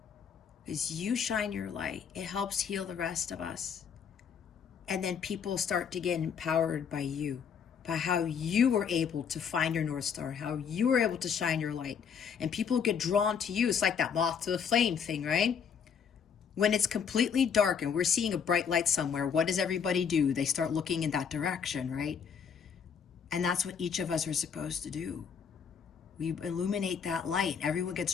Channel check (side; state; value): right; quieter; 7.0 dB